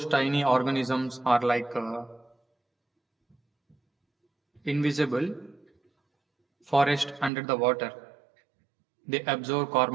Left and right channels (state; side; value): drops out; left; at 7.3 s